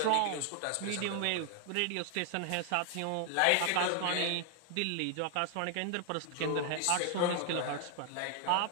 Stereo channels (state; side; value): different; both; correlation 0.00